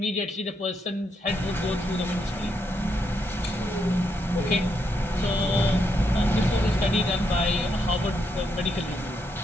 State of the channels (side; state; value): both; normal; correlation 0.79